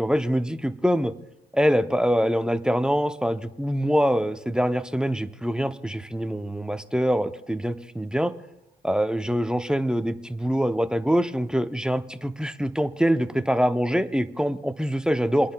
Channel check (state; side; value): normal; both; correlation 0.96